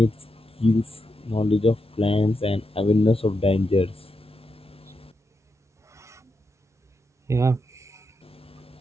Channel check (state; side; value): normal; both; correlation 0.85